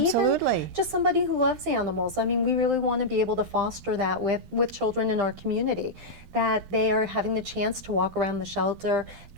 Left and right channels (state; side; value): late; left; 12 ms